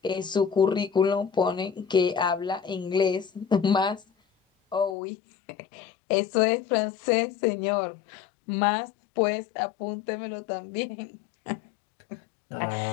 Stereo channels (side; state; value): right; drops out; at 5.0 s